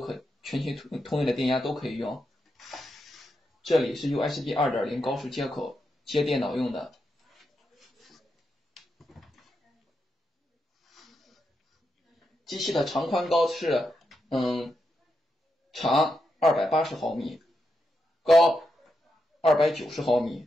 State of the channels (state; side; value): normal; both; correlation 0.85